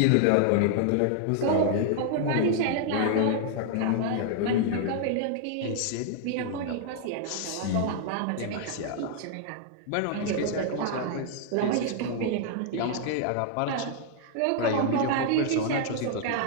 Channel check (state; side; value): different; both; correlation 0.00